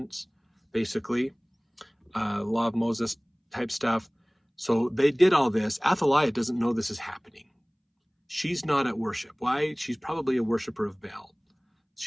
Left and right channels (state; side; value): identical; both; correlation 1.00